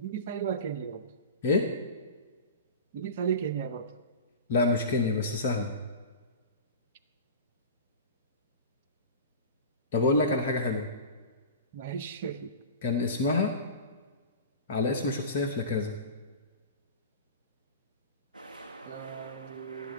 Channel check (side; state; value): both; inverted; correlation -0.32